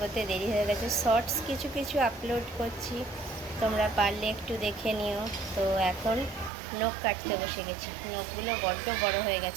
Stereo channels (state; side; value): drops out; left; at 6.5 s